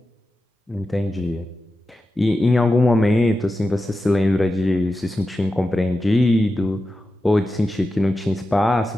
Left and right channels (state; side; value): normal; both; correlation 0.92